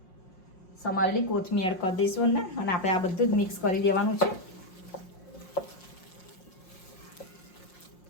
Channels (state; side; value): late; right; 5.6 ms